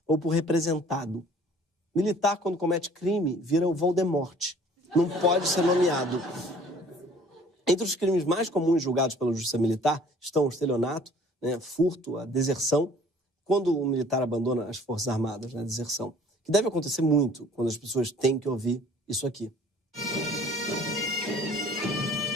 ou por representado. Militar, quando comete crime, vira o Voldemort. Não pode ser nomeado. Entre os crimes mais comuns julgados pela Justiça Militar estão o estelionato, né, furto, a deserção, quando o militar abandona as Forças Armadas, né, a deserção, que deve acontecer muito quando as pessoas têm que ouvir isso aqui.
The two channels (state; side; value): normal; both; correlation 0.53